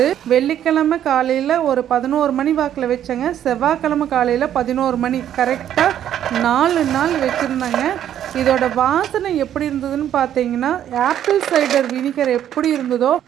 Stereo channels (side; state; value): left; quieter; 10.6 dB